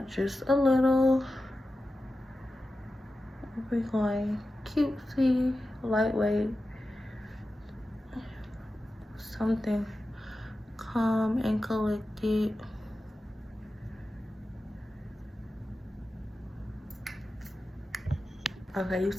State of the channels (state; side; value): normal; both; correlation 0.93